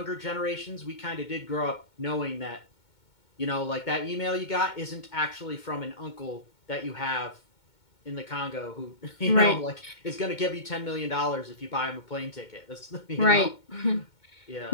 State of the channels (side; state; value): right; late; 2.2 ms